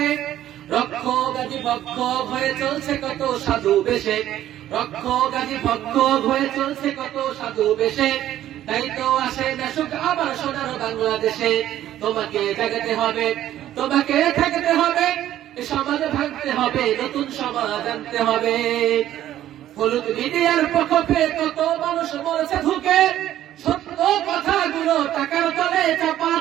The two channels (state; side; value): quieter; left; 12.5 dB